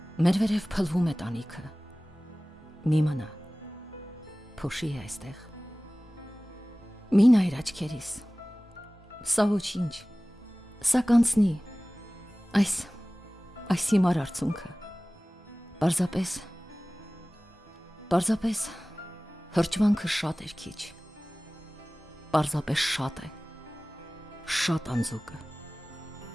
մեր վերև փլվում է տանիքը, մի մնա, փոշի է այստեղ, մի նայր աչքերիս, սա ոչինչ, սա կանցնի, այս հիմար արցունքը, պարզապես հրճվանքը շատ էր քիչ, պարզապես շատ է, շատ անձուկը,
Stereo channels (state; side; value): normal; both; correlation 0.98